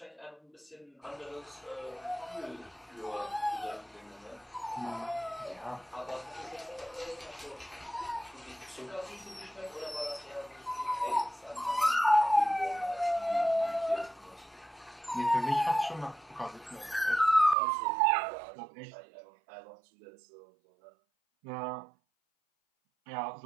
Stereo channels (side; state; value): left; drops out; at 17.6 s